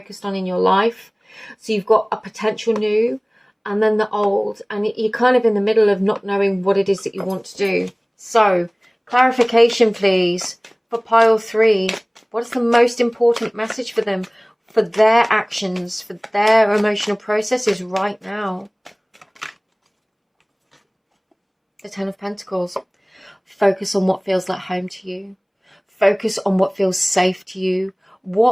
on in your life. So you've got a potential new and then the old, and you're kind of in the middle of not knowing what it is that you want to do. So clarification, please, for pile 3. What is the most important message for them, for their actions, for their emotional processes right now? The Ten of Pentacles. Focus on what feels like home to you. Focus on what feels safe to you.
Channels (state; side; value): identical; both; correlation 1.00